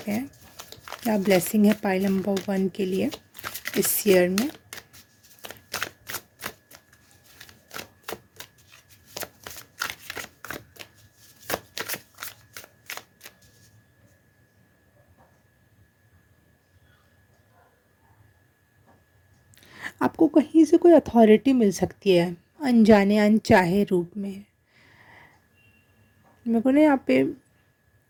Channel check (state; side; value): identical; both; correlation 1.00